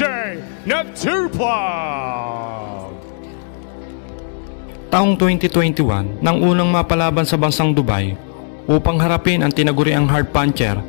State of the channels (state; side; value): silent; right; 68 dB below the other